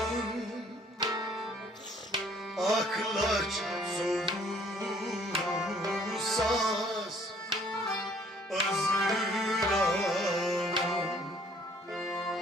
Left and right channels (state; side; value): normal; both; correlation 0.59